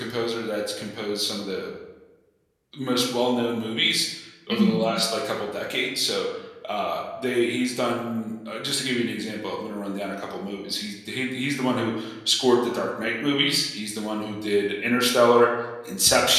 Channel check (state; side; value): identical; both; correlation 1.00